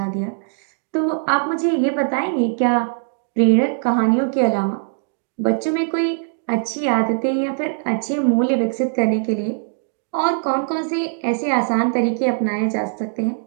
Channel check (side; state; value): left; silent; digital silence